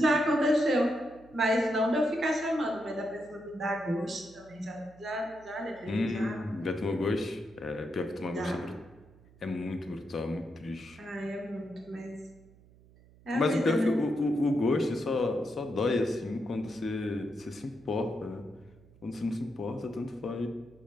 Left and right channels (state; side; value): noise; right; hum, 25 dB below the sound